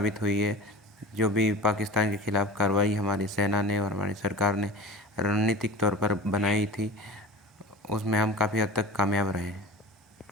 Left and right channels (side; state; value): both; normal; correlation 0.35